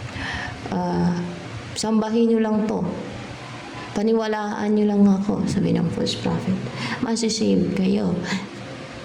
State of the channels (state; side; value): identical; both; correlation 1.00